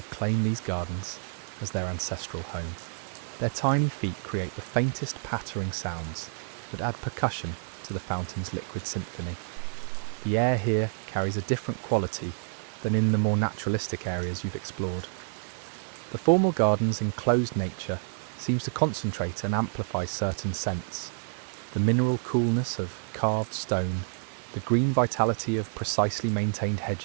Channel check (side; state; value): left; silent; 59 dB below the other